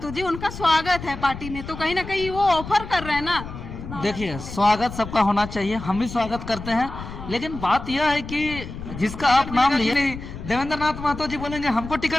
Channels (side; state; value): left; noise; rumble, 11 dB below the sound